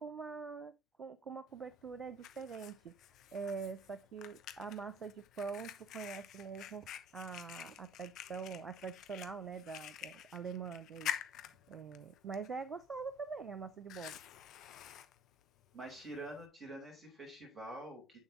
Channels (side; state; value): both; normal; correlation 0.52